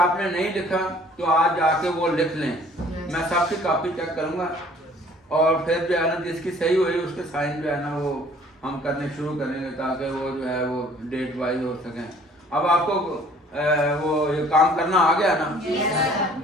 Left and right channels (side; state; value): both; normal; correlation 0.55